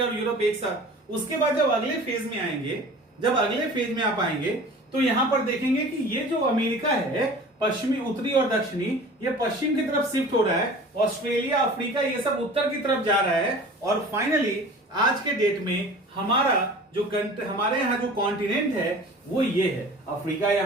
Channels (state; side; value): normal; both; correlation 0.42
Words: और यूरोप एक साथ। उसके बाद जब अगले फेज में आएंगे, जब अगले फेज में आप आएंगे तो यहां पर देखेंगे कि ये जो अमेरिका है, पश्चिमी, उत्तरी और दक्षिणी, ये पश्चिम की तरफ शिफ्ट हो रहा है। ऑस्ट्रेलिया, अफ्रीका, ये सब उत्तर की तरफ जा रहा है। और फाइनली आज के डेट में हमारे यहाँ जो कॉन्टिनेंट है वो ये है। अफ्रीका